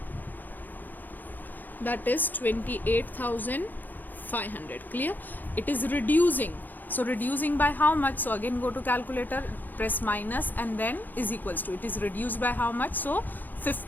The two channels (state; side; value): late; right; 0.086 ms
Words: that is 28,500. Clear? It is reducing. So reducing by how much? So again go to calculator, press minus and then is equals to. It is reduced by how much? So